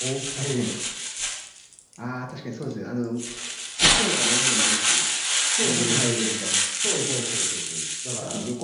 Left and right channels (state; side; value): identical; both; correlation 1.00